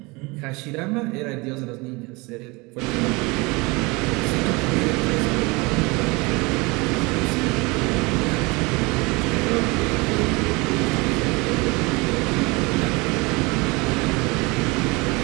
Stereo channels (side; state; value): left; quieter; 25.7 dB